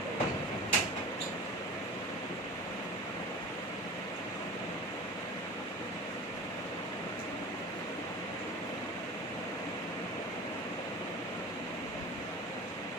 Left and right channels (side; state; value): both; normal; correlation 0.36